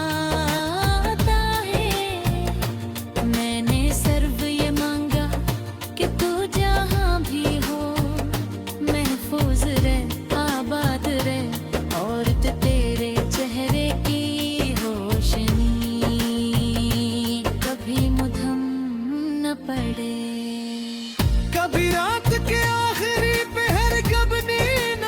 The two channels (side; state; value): both; identical; correlation 1.00